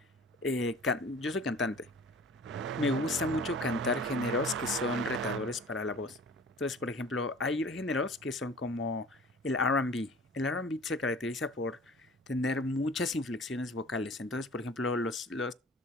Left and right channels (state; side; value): normal; both; correlation 0.45